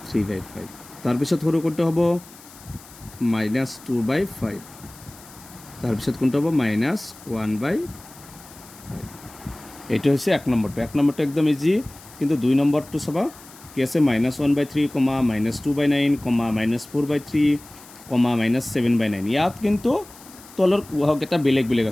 তাৰপিছত সৰু কোনটো হ'ব -2/5 তাৰপিছত কোনটো হ'ব -1/5 এইটো হৈছে 1 নম্বৰটো একদম ইজি কিন্তু 2 নম্বৰটো চাবা কি আছে -1/3, -2/9, -4/3, -7/9 ইয়াত কিন্তু তলৰ এটা বেলেগ বেলেগ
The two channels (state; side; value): noise; left; hiss, 21 dB below the sound